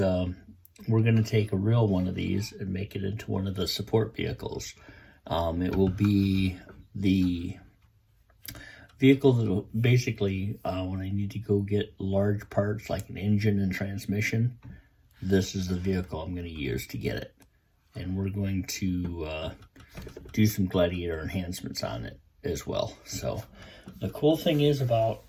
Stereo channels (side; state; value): both; identical; correlation 1.00